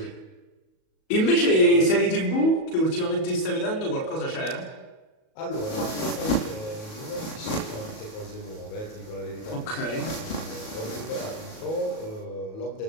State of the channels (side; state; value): right; late; 37 ms